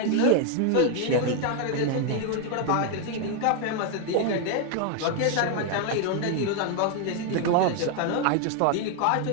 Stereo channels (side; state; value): both; different; correlation 0.01